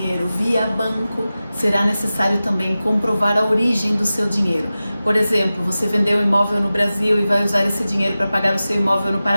via banco, será necessário também comprovar a origem do seu dinheiro. Por exemplo, você vendeu um imóvel no Brasil e vai usar esse dinheiro para pagar o seu imóvel no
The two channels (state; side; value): inverted; both; correlation -0.95